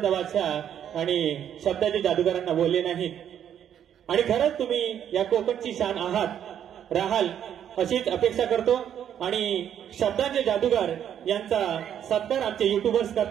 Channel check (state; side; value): quieter; left; 9.6 dB